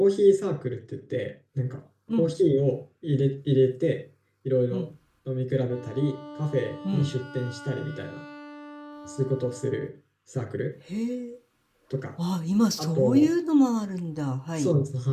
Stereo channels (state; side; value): identical; both; correlation 1.00